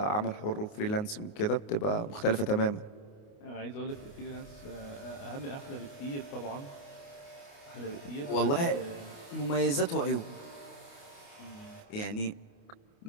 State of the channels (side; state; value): right; late; 29 ms